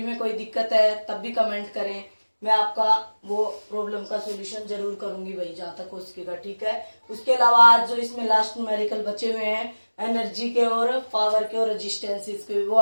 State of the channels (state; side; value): inverted; both; correlation -1.00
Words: में कोई दिक्कत है तब भी कमेंट करें. मैं आपका वो प्रॉब्लम का सोल्यूशन जरूर करूंगी भाई, जहां तक हो सकेगा. ठीक है. उसके अलावा आज जो इसमें लास्ट न्यूमेरिकल बचे हुए हैं एनर्जी के और पावर के और रेजिस्टेंसेस के, वो